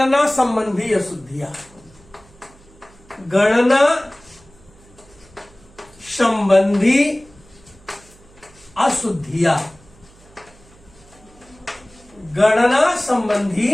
संबंधी अशुद्धियां, गणना संबंधी अशुद्धियां, गणना संबंधी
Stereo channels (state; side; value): noise; right; hum, 26 dB below the sound